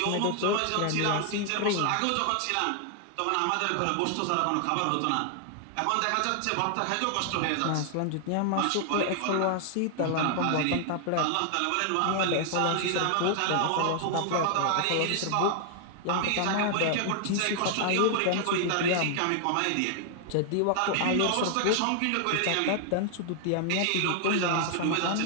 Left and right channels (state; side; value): different; both; correlation 0.00